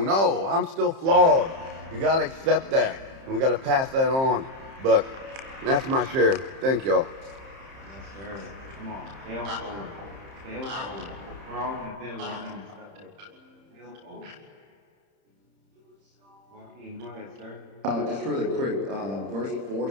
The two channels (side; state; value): left; late; 30 ms